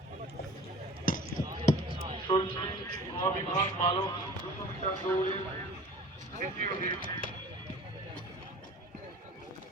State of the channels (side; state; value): both; normal; correlation 0.43